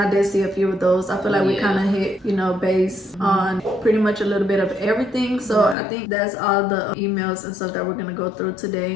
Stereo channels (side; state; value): right; drops out; at 5.8 s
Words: did see a few of those. I feel like we kind of hit, you know, base on pretty much a little bit of everything. So I think that's all the emails and stuff that we're gonna go through